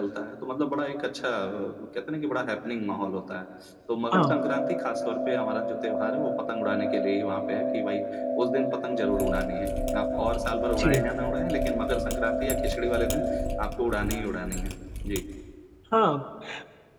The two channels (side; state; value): both; identical; correlation 1.00